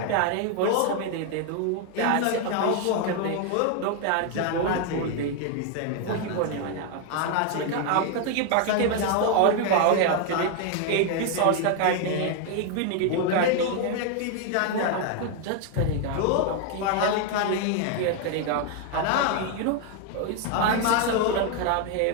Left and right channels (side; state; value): both; different; correlation 0.01